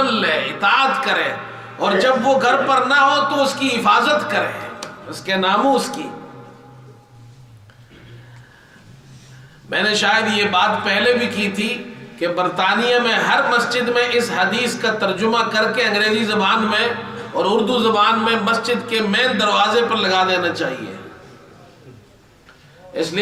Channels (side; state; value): both; identical; correlation 1.00